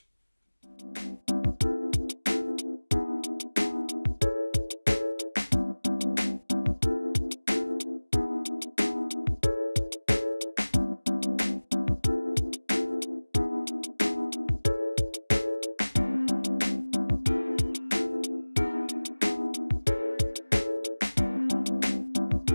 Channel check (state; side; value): inverted; both; correlation -1.00